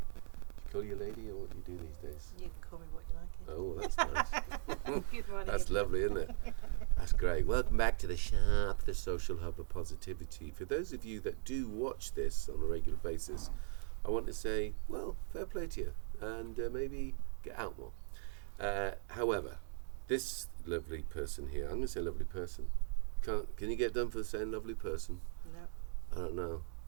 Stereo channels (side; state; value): left; silent; 52 dB below the other